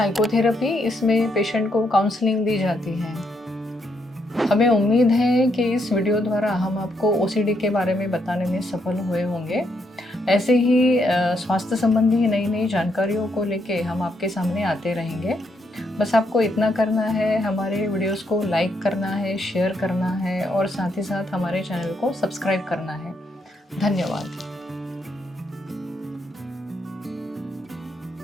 इसमें पेशेंट को काउंसलिंग दी जाती है। हमें उम्मीद है कि इस वीडियो द्वारा हम आपको ओसीडी के बारे में बताने में सफल हुए होंगे। ऐसे ही स्वास्थ्य संबंधी नई नई जानकारियों को लेके हम आपके सामने आते रहेंगे। बस आपको इतना करना है, हमारे वीडियोस को लाइक करना है, शेयर करना है और साथ ही साथ हमारे चैनल को सब्सक्राइब करना है। धन्यवाद।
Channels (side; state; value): both; normal; correlation 0.77